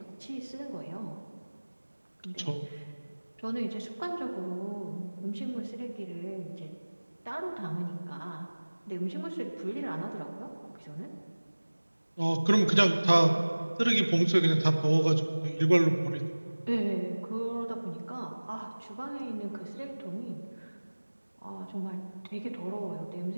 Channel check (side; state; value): both; inverted; correlation -1.00